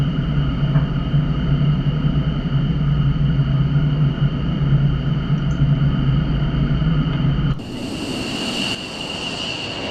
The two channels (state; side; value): identical; both; correlation 1.00